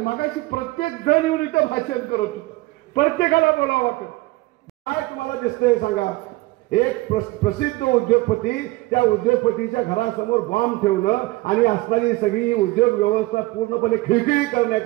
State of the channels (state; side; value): quieter; left; 20.4 dB